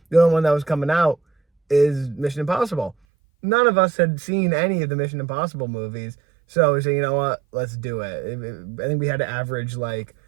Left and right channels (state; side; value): drops out; left; at 3.0 s